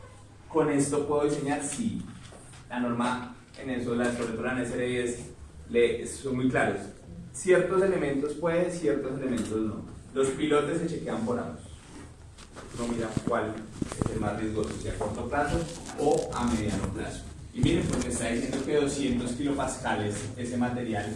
Con esto puedo diseñar, sí. La norma en eso, sobre todo la NSR10, son muy claros. Ciertos elementos pueden, ciertos elementos no. Los pilotes se chequean por ambos. Uno mira cuál es el más riesgoso, si a corto plazo o a mediano plazo. Y miren, pues me está diciendo que 200 kilopascales ese material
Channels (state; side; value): identical; both; correlation 1.00